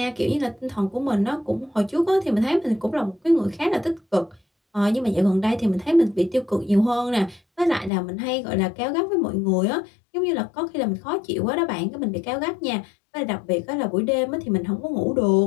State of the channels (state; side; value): drops out; right; at 7.9 s